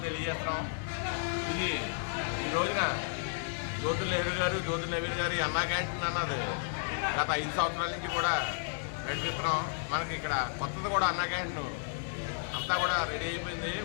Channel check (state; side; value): silent; right; digital silence